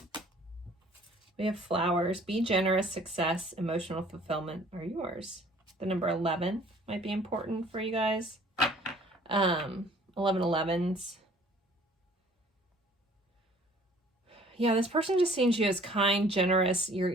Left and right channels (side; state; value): both; normal; correlation 0.54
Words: We have flowers. Be generous, success, emotional fulfillment are yours. The number 11 might be important for you guys. 1111s. Yeah, this person just sees you as kind, generous.